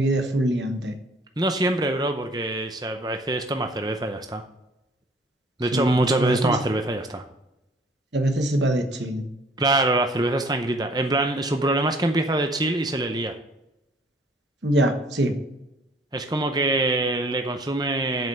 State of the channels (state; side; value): normal; both; correlation 0.56